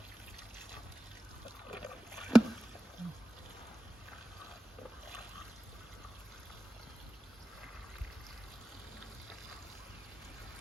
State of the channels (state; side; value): normal; both; correlation 0.94